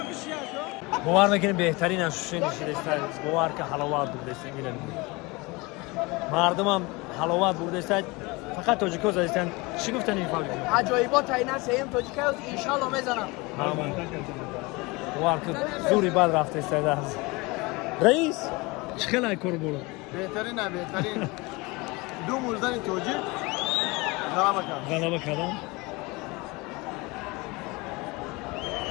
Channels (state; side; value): quieter; right; 24.8 dB